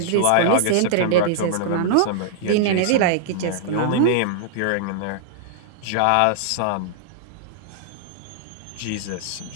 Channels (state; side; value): different; both; correlation -0.01